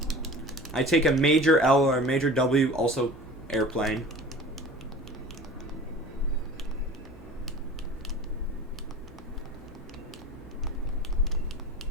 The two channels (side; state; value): both; normal; correlation 0.40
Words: I take a major L or a major W, also airplane.